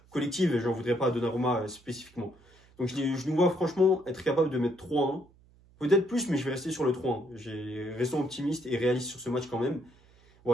collective et j'en voudrais pas à Donnarumma spécifiquement. Donc, je nous vois franchement être capable de mettre 3-1. Peut-être plus, mais je vais rester sur le 3-1. Restons optimiste et réaliste sur ce match quand même.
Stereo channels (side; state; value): right; noise; hum, 29 dB below the sound